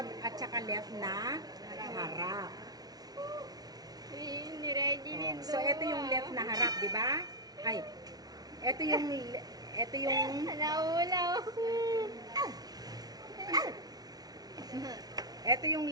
at saka left na harap. Ni-ready din So, ito yung left na harap, di ba? Ay, ito yung Naulaw. ito yung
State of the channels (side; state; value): left; late; 0.19 ms